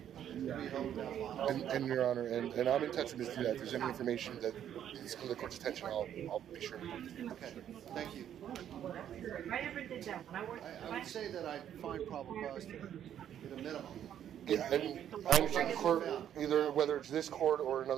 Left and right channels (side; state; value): left; quieter; 10.1 dB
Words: And Your Honor, and I'm in touch with Ms. Duda. If there's any information that is under the court's attention, I'll be sure to. Okay, thank you. I never did that. When I worked, I would say that I find probable cause at a minimum. Yeah, I understand the court, either whether it's this court or